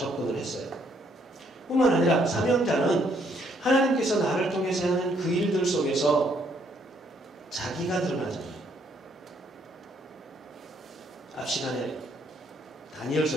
했어요. 뿐만 아니라 사명자는 하나님께서 나를 통해서 하는 그 일들 속에서 자기가 드러나잖아요. 앞 시간에 다니엘서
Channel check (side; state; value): both; normal; correlation 0.69